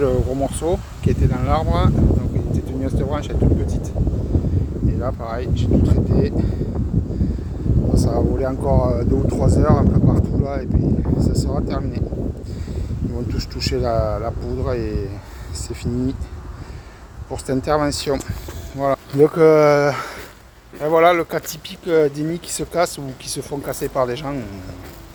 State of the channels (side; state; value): both; identical; correlation 1.00